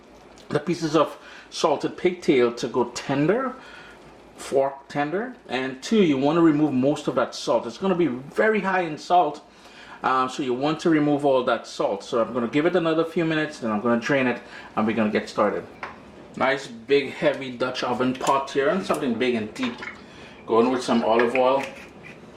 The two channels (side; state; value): both; identical; correlation 1.00